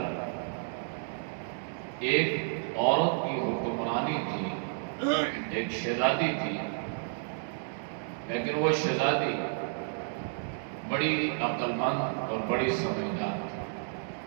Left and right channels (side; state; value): left; silent; digital silence